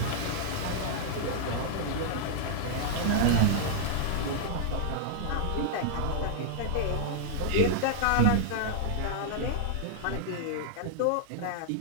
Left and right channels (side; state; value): both; different; correlation -0.01